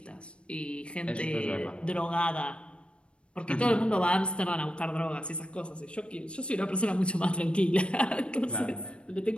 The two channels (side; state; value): right; late; 0.058 ms